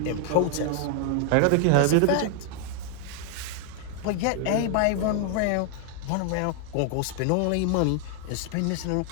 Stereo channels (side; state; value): both; different; correlation 0.00